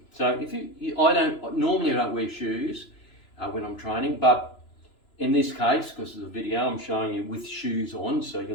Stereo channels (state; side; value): late; right; 2.9 ms